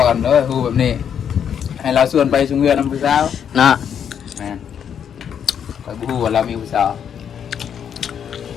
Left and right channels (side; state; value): right; quieter; 8.3 dB